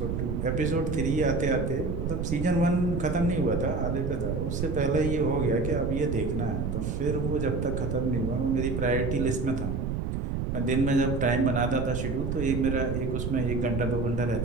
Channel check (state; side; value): noise; right; rumble, 2 dB below the sound